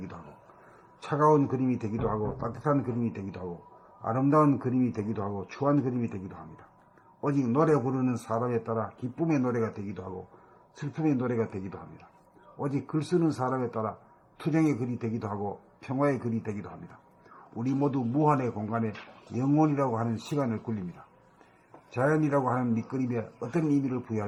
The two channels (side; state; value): both; identical; correlation 1.00